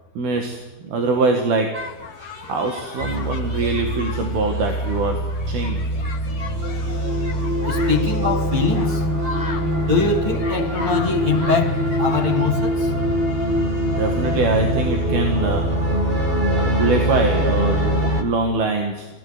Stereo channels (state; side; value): late; left; 12 ms